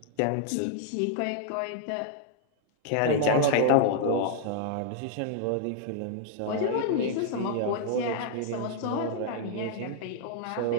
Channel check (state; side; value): different; both; correlation -0.01